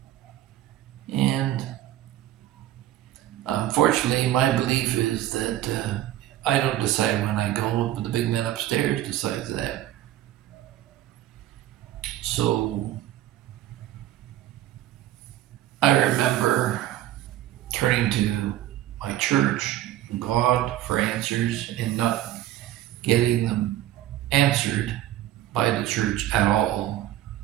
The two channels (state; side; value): quieter; left; 13.4 dB